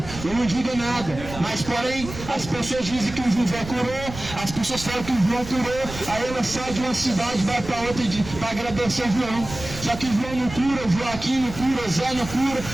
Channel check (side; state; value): right; noise; rumble, 12 dB below the sound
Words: eu não digo nada. Mas porém, as pessoas dizem que o José curou, as pessoas falam que o João curou, aí ela sai de uma cidade, vai para outra para agradecer João. Só que João não cura, Joaquim não cura, Zé não cura,